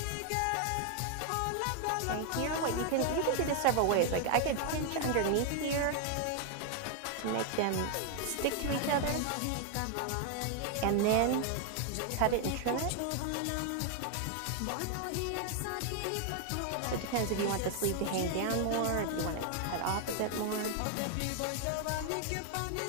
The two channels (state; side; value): different; both; correlation 0.00